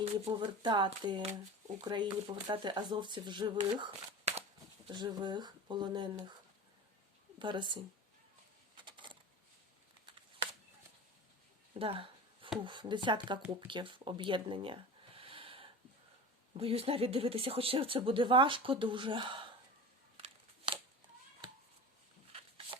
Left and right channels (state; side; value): normal; both; correlation 0.33